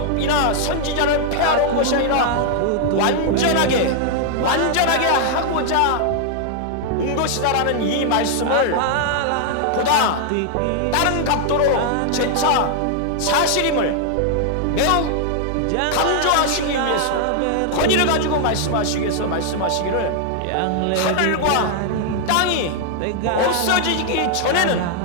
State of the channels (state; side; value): different; both; correlation 0.00